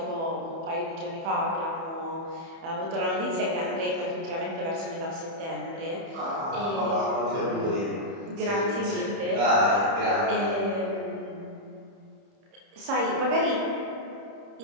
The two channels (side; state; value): left; late; 30 ms